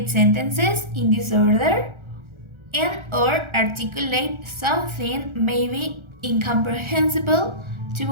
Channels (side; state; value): left; late; 1.4 ms